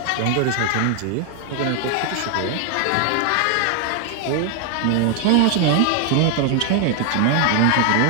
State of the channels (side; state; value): both; different; correlation 0.00